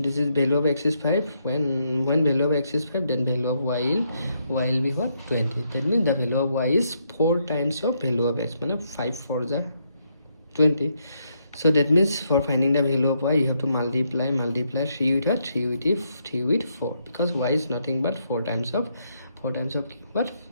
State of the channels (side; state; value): both; inverted; correlation -0.76